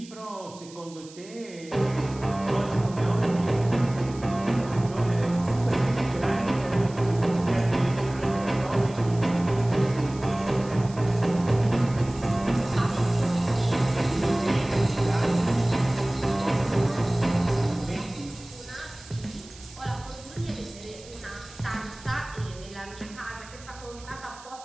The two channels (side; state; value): right; noise; hiss, 20 dB below the sound